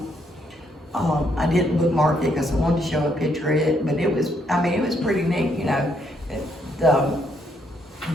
I didn't bookmark it because I wanted to show a picture of it, but it was pretty neat, you know.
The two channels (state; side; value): normal; both; correlation 0.73